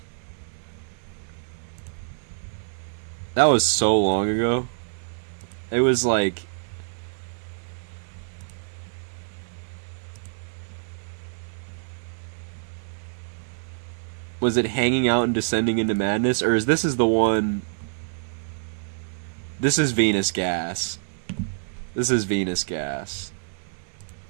That was so long ago. It was like... Was it Hanging Out and Descending into Madness? Or is this the one... This is Venus Gas. This is Venus Gas.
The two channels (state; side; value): silent; left; 60 dB below the other